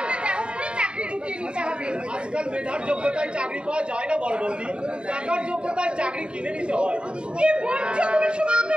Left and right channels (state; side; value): late; left; 0.053 ms